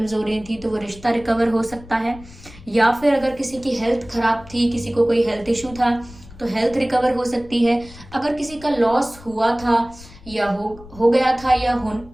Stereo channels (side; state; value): left; noise; rumble, 20 dB below the sound